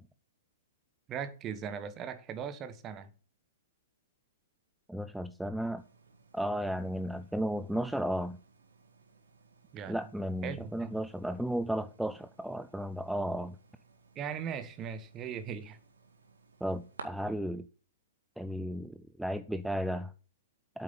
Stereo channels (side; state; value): both; normal; correlation 0.85